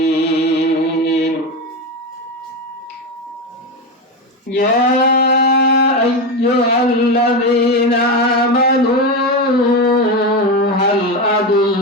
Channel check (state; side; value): normal; both; correlation 0.15